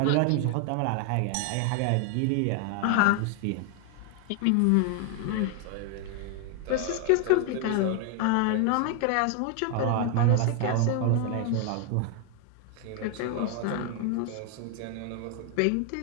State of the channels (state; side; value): different; both; correlation 0.01